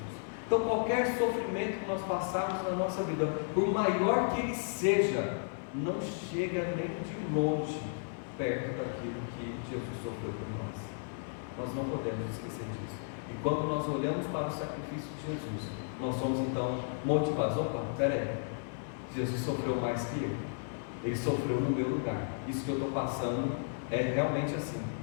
Então qualquer sofrimento que nós passarmos na nossa vida, por maior que ele seja, não chega nem de longe perto daquilo que Jesus sofreu por nós. Nós não podemos esquecer disso. E quando nós olhamos para o sacrifício de Jesus, nós somos então motivados. Opa, peraí, Jesus sofreu mais que eu. Ele sofreu no meu lugar. Isso que eu estou passando é realmente assim,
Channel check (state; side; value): silent; right; 55 dB below the other